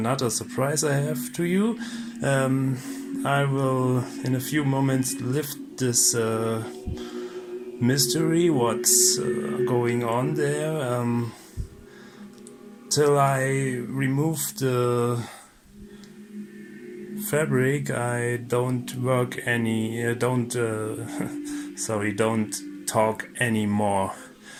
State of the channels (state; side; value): identical; both; correlation 1.00